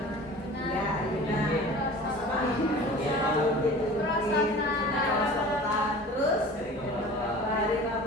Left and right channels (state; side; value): normal; both; correlation 0.41